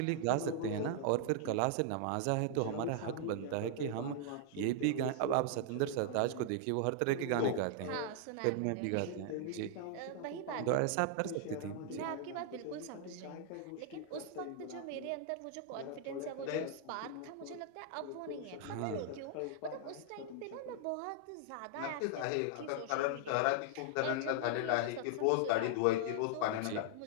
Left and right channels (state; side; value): different; both; correlation -0.01